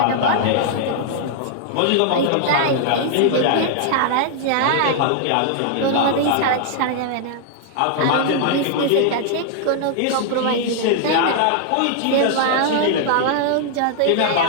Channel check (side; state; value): both; different; correlation 0.00